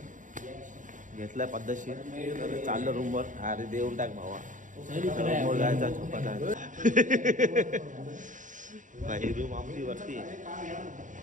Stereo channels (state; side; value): late; left; 0.37 ms